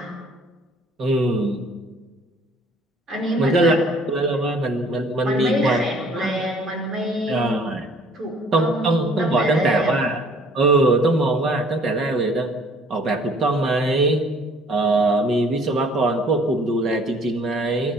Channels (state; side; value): normal; both; correlation 0.56